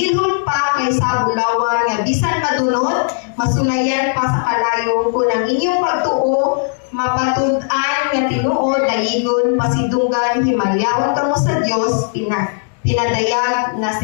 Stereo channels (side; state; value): right; silent; digital silence